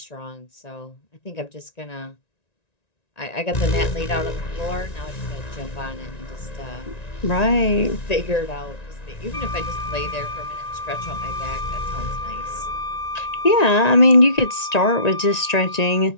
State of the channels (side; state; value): right; late; 1.9 ms